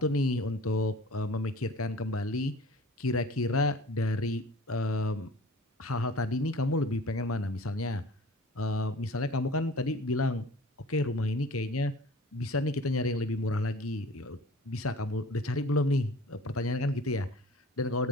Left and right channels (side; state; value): both; normal; correlation 0.44